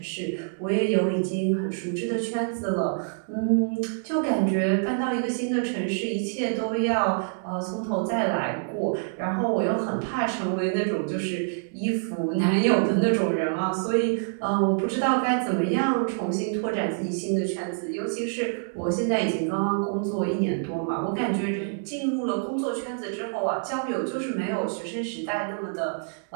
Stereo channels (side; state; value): left; silent; 60 dB below the other